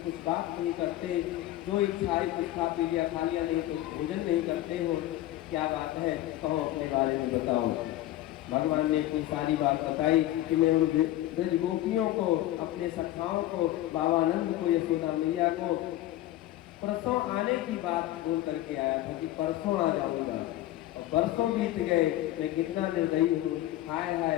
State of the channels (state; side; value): quieter; right; 14.8 dB